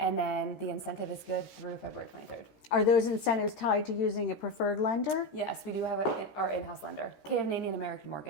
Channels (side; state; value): right; late; 13 ms